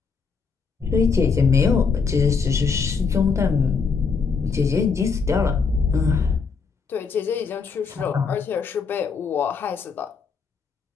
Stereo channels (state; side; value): quieter; right; 5.3 dB